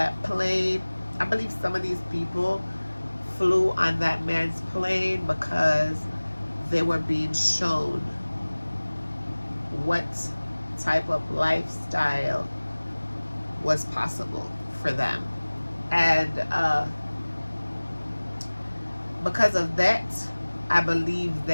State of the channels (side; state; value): both; inverted; correlation -1.00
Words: plane. I believe some of these people flew on that man's plane because they were being shown what type of lifestyle was possible for them. And because of that, I believe